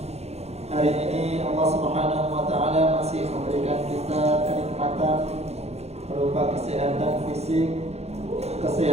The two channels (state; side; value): late; left; 0.31 ms